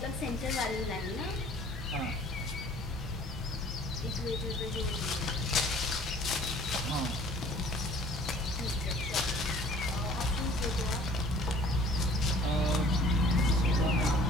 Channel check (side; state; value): both; normal; correlation 0.52